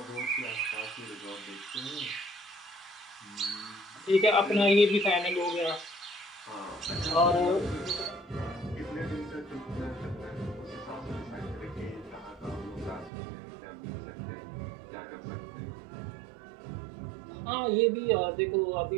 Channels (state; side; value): drops out; left; at 13.1 s